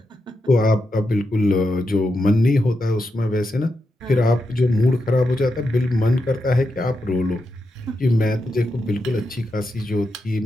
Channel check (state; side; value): normal; both; correlation 0.86